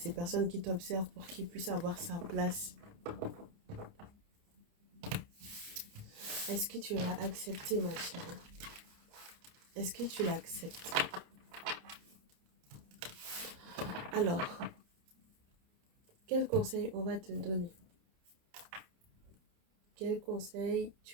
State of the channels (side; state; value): left; late; 29 ms